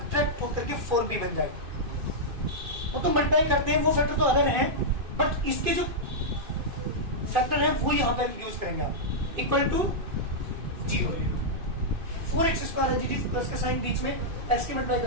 होकर के 4b बन जाए, वो तो मल्टीप्लाई करते हैं, वो फैक्टर तो अलग है, बट इसके जो फैक्टर है वो यहाँ पे यूज करेंगे आप, इक्वल टू 0। 4x स्क्वायर है जी प्लस का साइन बीच में, x की मल्टीप्लाई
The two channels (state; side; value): late; left; 2.6 ms